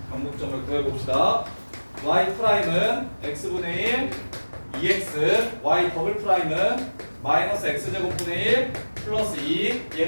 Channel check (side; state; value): both; inverted; correlation -1.00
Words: 변곡점을 구해봅시다. y 프라임은 x분의 1 2x, y 더블 프라임은 마이너스 x제곱분의 1 플러스 2.